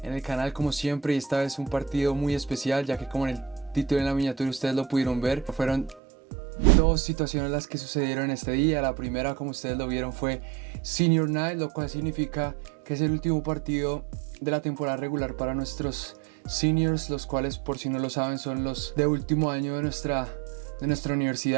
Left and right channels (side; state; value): left; drops out; at 6.0 s